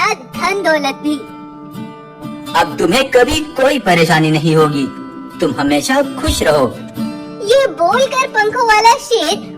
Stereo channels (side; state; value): both; identical; correlation 1.00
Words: धन दौलत भी। अब तुम्हें कभी कोई परेशानी नहीं होगी, तुम हमेशा खुश रहो। ये बोलकर पंखों वाला शेर